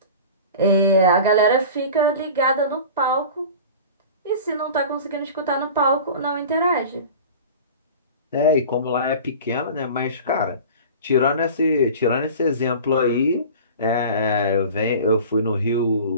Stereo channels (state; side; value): inverted; both; correlation -0.37